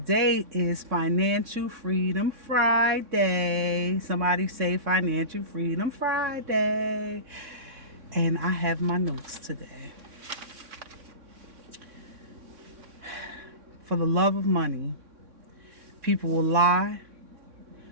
is Financial Freedom Friday. Somebody say Financial Freedom Friday. And I have my notes today. For the love of money, people will lie.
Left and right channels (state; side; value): late; left; 3.6 ms